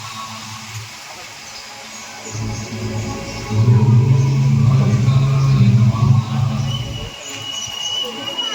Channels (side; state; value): both; identical; correlation 1.00